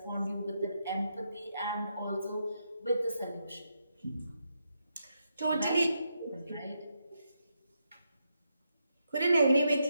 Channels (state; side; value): inverted; both; correlation -0.82